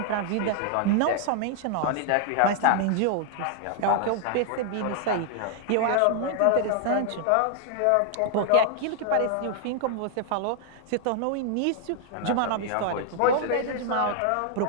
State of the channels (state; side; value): different; both; correlation 0.00